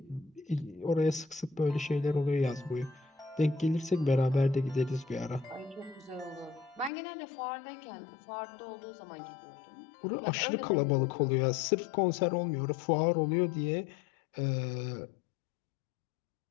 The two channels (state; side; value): drops out; right; at 6.9 s